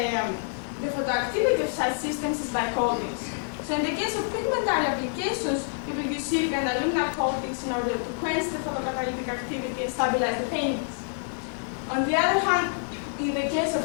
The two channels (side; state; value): right; silent; digital silence